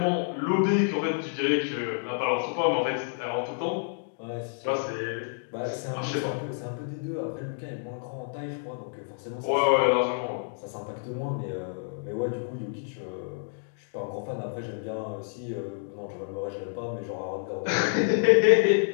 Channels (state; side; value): silent; right; digital silence